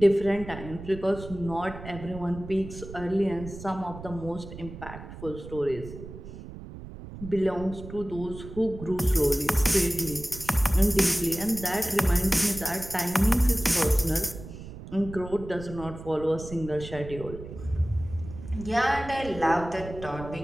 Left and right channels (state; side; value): noise; right; rumble, 13 dB below the sound